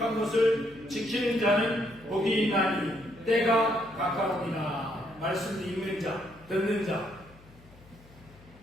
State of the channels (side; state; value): left; noise; hum, 24 dB below the sound